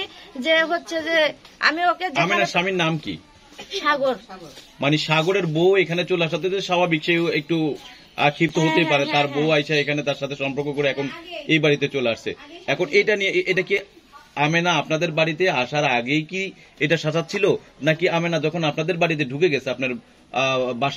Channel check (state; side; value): identical; both; correlation 1.00